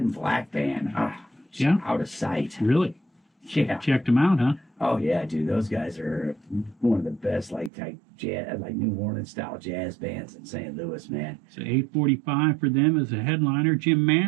and Black Band. Oh, Yeah. out of sight. Really? Yeah. Checked them out, huh? Oh yeah, dude. Those guys are one of the best like type jazz, like New Orleans style jazz bands in St. Louis, man. So 8:45 for them as a headliner. Jim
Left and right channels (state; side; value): drops out; left; at 7.7 s